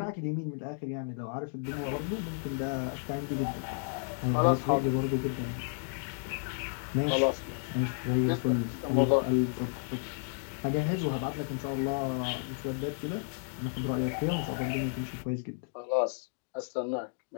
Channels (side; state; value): right; silent; digital silence